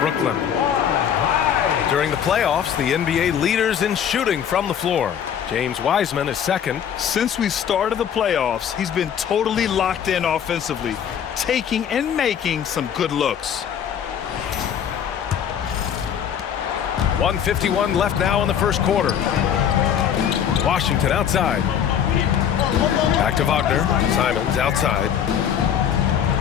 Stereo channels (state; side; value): quieter; right; 8.8 dB